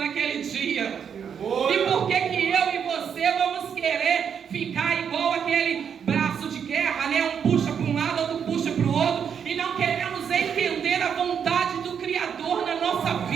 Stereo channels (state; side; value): quieter; left; 7.5 dB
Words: dia. E por que eu e você vamos querer ficar igual aquele braço de guerra, Um puxa para um lado, outro puxa para o outro, e não queremos entender a vontade do Criador na nossa